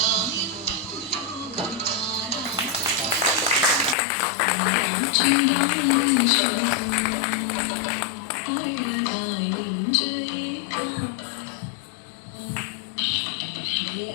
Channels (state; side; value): drops out; right; at 4.0 s